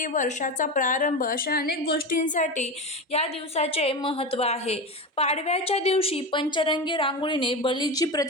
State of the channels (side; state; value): both; normal; correlation 0.21